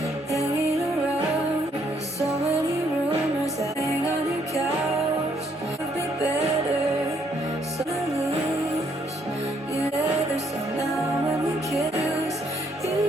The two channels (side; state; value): both; normal; correlation 0.70